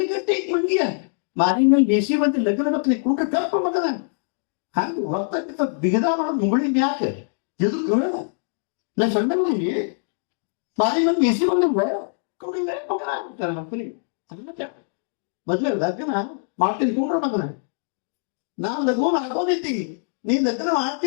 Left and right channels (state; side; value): silent; right; digital silence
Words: ಮಂದಿಯ ಮಾರಿನಲ್ಲಿ ಬೇಸಿ ಬಂದು ಲಗ್ನ ಮಕ್ಕಳಿಗೆ ಕೂಟ ಕಲ್ಪ ಮಗನ ಹಂಗ ಹೊರತಕ್ಕಿಂತ ಬಿಗದ ಮಾಡೋದು ಮುಗುಳಿ ಯಾಕೆ ಎದಕ್ಕೆ ನಾ ಸಣ್ಣ ಮಂದಿ ಮಾರಿನಲ್ಲಿ ಬೇಸಿ ಬಂದಿಲ್ಲ ಕೊಂಡಲ್ಲೇ ಮಗನ ಅಂತಾರೆ ಮಕ್ಕಳಿಗೆ. ಮದ್ವೆ ಲಗ್ನ ಮಾಡ್ತೀನಿ ಕೊಂಡ್ರ ಮಗನ, ನಾ ಲಘುನ ಹಾಕೋದಿತ್ತಿ, ನೀ ಲಗ್ನ